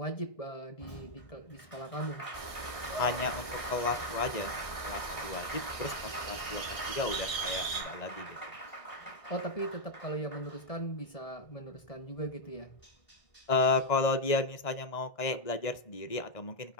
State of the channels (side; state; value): right; late; 1.6 ms